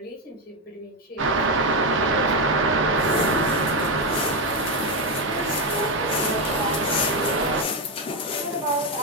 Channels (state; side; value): normal; both; correlation 0.08